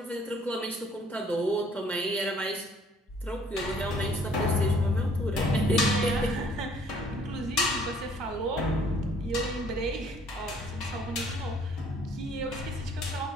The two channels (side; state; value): both; normal; correlation 0.59